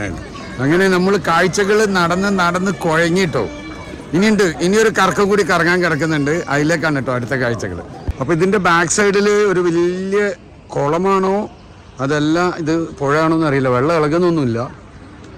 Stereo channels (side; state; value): both; identical; correlation 1.00